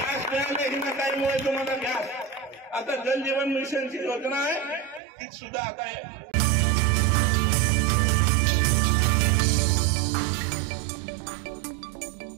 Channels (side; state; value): left; drops out; at 5.0 s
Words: मिळाले हिनाताईमुळे तुम्हाला गॅस. आता जल जीवन मिशनची योजना आहे ती सुद्धा आता